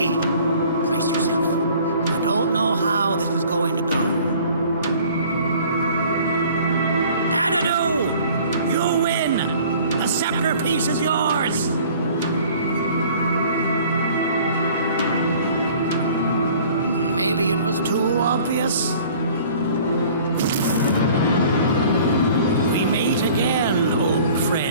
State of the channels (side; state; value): both; inverted; correlation -0.50